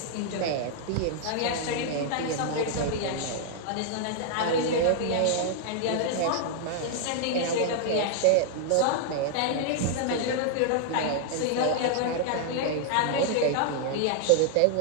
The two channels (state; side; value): different; both; correlation -0.01